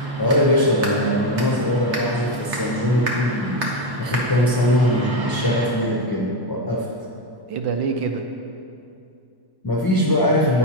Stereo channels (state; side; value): late; left; 1.1 ms